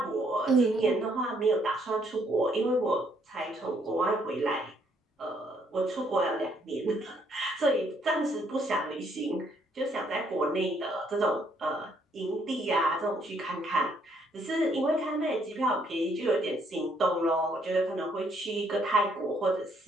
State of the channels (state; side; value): normal; both; correlation 0.69